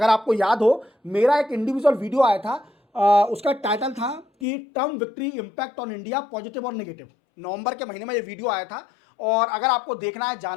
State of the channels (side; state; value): right; drops out; at 4.5 s